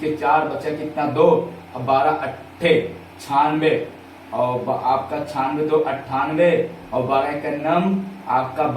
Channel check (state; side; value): identical; both; correlation 1.00